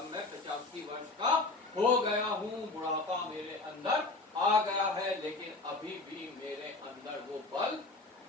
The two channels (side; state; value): right; quieter; 3.3 dB